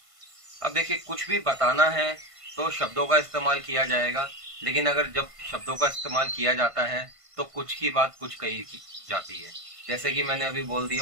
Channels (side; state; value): left; late; 1.5 ms